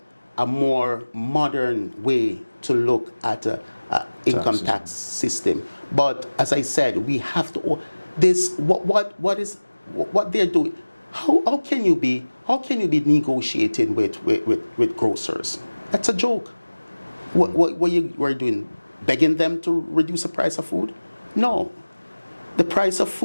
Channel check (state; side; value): inverted; both; correlation -1.00